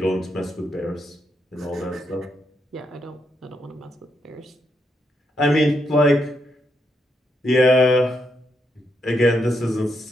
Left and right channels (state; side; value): normal; both; correlation 0.80